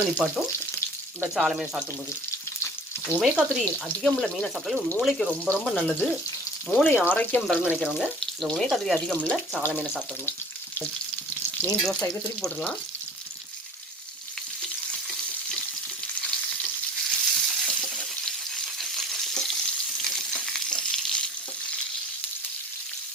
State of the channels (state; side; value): normal; both; correlation 0.45